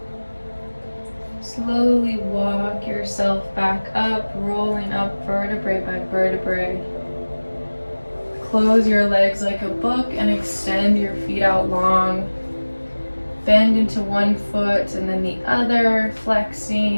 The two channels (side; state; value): both; inverted; correlation -1.00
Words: Slowly walk yourself back up, rolling up vertebrae by vertebrae. Close your legs like a book and extend your feet out long. Bend into one foot and then the other,